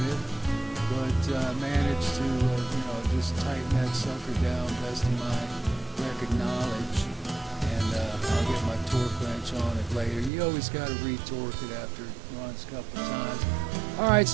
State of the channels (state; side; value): drops out; left; at 10.3 s